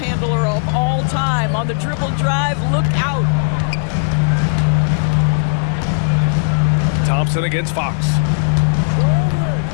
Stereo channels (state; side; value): silent; right; 69 dB below the other